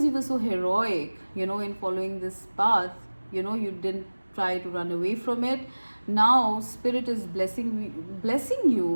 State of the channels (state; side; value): inverted; both; correlation -1.00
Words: you were so heroic, in following this path, you didn't try to run away from it. Now Spirit is blessing